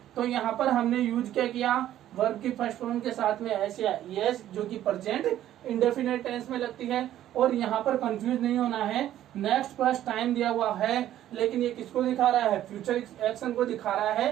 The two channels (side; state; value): left; quieter; 12.3 dB